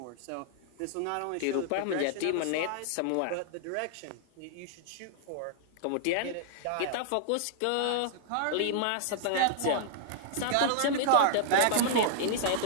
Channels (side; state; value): both; different; correlation -0.01